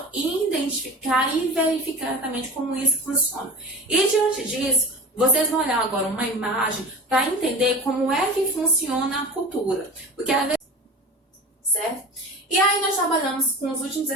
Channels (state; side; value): normal; both; correlation 0.33